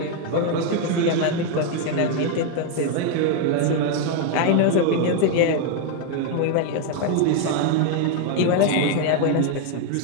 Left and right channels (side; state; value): both; different; correlation 0.01